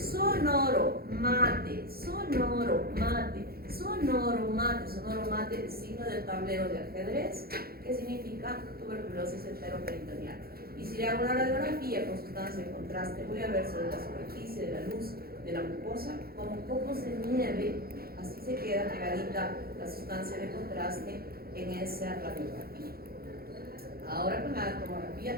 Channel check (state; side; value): late; left; 0.44 ms